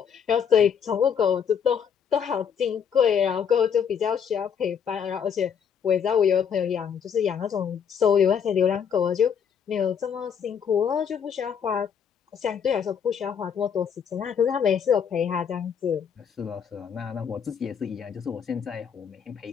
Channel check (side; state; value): right; quieter; 7.5 dB